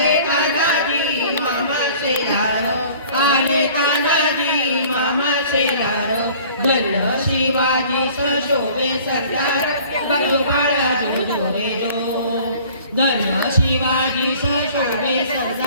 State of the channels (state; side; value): inverted; both; correlation -0.49